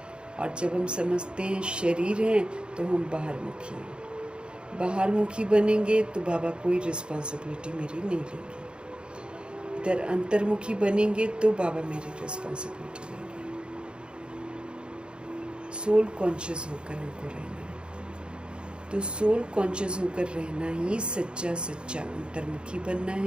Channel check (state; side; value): late; left; 0.053 ms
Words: और जब हम समझते हैं शरीर हैं तो हम बाहरमुखी हैं। बाहरमुखी बनेंगे तो बाबा कोई रिस्पॉन्सिबिलिटी मेरी नहीं लेंगे। इधर अंतर्मुखी बनेंगे तो बाबा मेरी रिस्पॉन्सिबिलिटी लेंगे। सोल कॉन्शियस होकर हमको रहना है। तो सोल कॉन्शियस होकर रहना ही सच्चा सच्चा अंतर्मुखी बनना